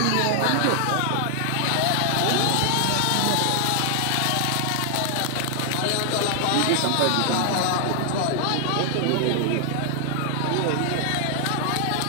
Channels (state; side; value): different; both; correlation 0.00